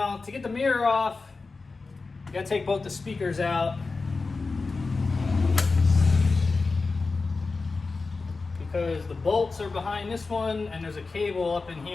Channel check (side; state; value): right; quieter; 4.0 dB